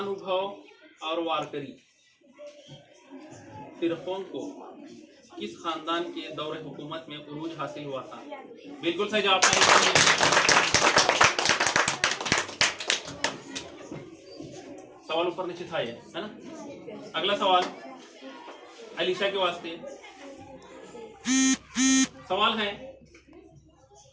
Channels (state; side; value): identical; both; correlation 1.00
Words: और वारकरी फिरकों को किस खानदान के दौरे हुकूमत में उरूज हासिल हुआ था? बिल्कुल सही जवाब है। सवाल ऊपर नीचे था ये, है ना। अगला सवाल अलीशा के वास्ते सवाल है,